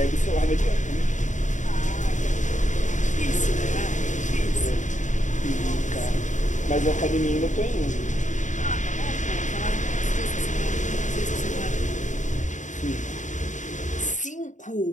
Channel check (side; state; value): right; late; 0.36 ms